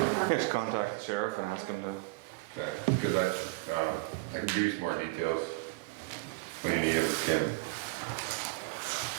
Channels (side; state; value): left; quieter; 24.8 dB